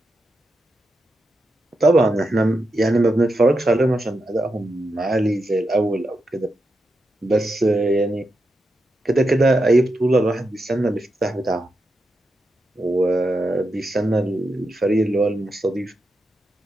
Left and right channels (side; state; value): both; normal; correlation 0.86